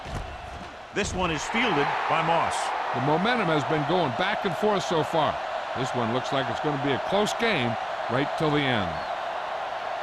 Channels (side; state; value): both; identical; correlation 1.00